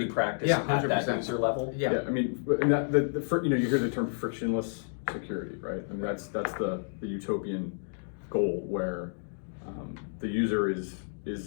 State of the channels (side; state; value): right; silent; digital silence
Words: practice at 100%. that user level? Yeah. I mean, and you hear the term frictionless security, right? I mean, that's the utopian goal where the user